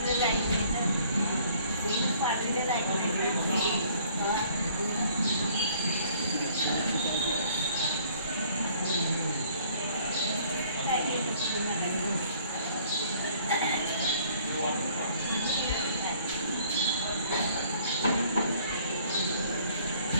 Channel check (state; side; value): inverted; both; correlation -0.58